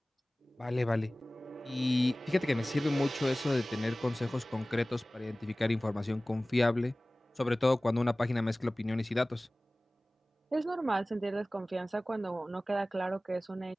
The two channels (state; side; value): normal; both; correlation 0.98